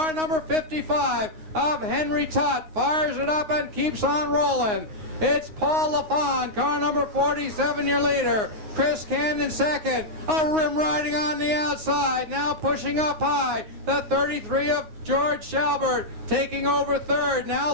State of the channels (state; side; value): late; left; 9.5 ms